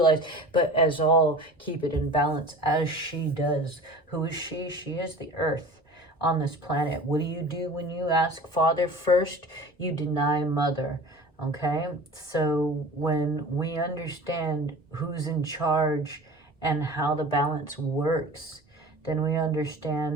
but as all keep it in balance as she does. Who is she? She is the earth on this planet. What do you do when you ask Father first? You deny Mother. Okay? So when we understand who's in charge and how the balance works, then we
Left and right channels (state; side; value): normal; both; correlation 0.39